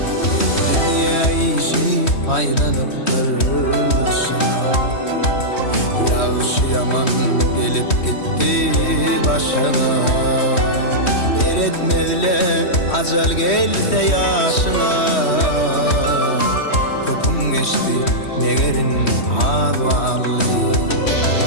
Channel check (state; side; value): late; right; 3.1 ms